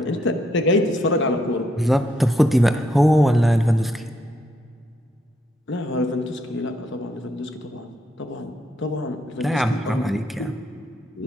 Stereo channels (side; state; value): both; normal; correlation 0.76